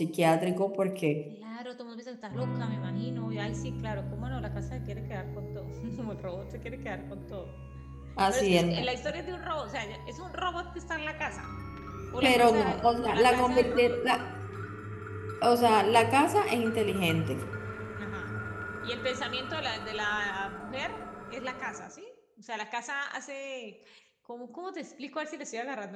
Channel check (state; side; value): identical; both; correlation 1.00